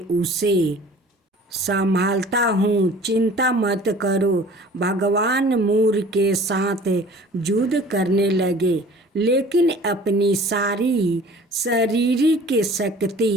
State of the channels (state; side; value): normal; both; correlation 0.47